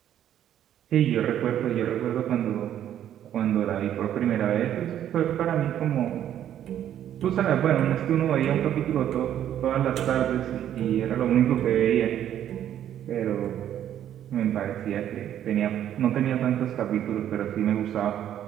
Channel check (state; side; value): quieter; left; 10.8 dB